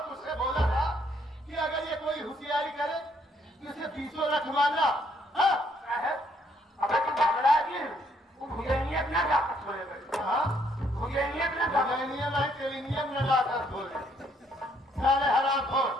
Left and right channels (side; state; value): both; normal; correlation 0.69